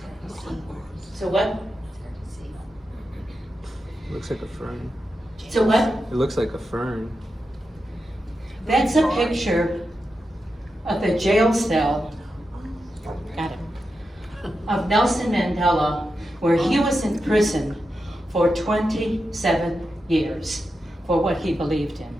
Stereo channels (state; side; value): normal; both; correlation 0.89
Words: So what? Looks like a fern. So what? It looks like a fern. That's a picture of the jail cell, got it, of Nelson Mandela, where he was in prison for 27 years for what he believed in.